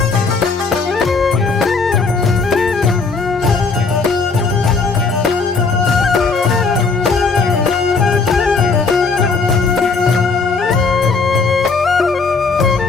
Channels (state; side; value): quieter; right; 4.5 dB